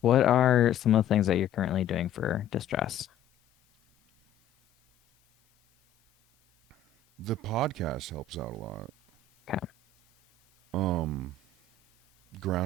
What are some of the things that you're currently doing for distress? The podcast helps out a lot. Okay. Um,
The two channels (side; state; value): right; quieter; 6.0 dB